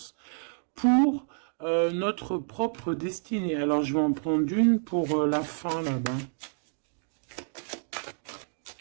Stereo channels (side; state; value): left; silent; digital silence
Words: pour notre propre destinée. Alors je vais en prendre une pour la fin là-bas.